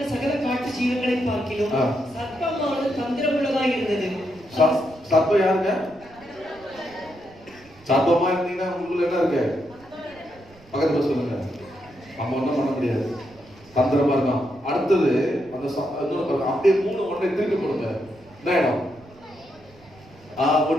சகல காட்டு ஜீவன்களை பார்க்கிலும் சர்ப்பமானது தந்திரமுள்ளதாக இருந்தது. சர்ப்பம் யாருங்க? சர்ப்பமா இருந்தீங்கன்னா உங்களுக்கு என்ன இருக்கு? பக்கத்துல சொல்லுங்க. நம்ம ஒன்றும் பண்ண முடியாது, தந்திரமா இருக்கான். அடுத்தது அந்த அப்படியே 3:1 திருப்பி கொடுங்க. என்ன இடம்?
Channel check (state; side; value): noise; right; rumble, 25 dB below the sound